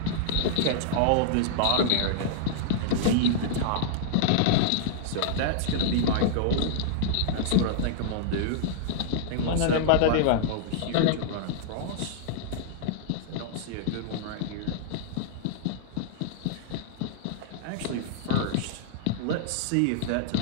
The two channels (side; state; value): both; different; correlation -0.01